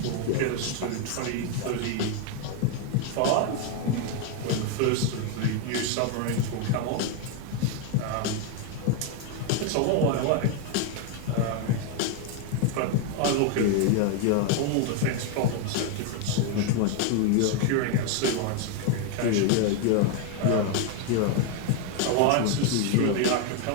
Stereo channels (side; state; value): both; different; correlation 0.01